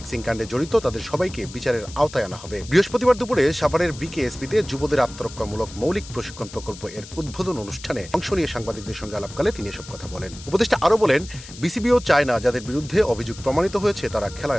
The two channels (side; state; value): left; noise; hiss, 16 dB below the sound